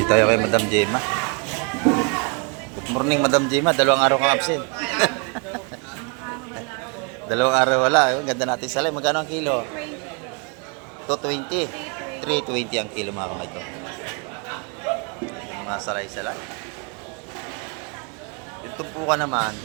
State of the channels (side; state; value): left; quieter; 34.1 dB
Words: tayo kay Madam Gemma. Good morning, Madam Gemma. Dalawang araw kang absent. Dalawang araw wala. Ang ganda natin salay. Magkano ang kilo? 220. 320 ang kilo, mga kamay ko. Mga salay-salay. Yung tumpukan naman,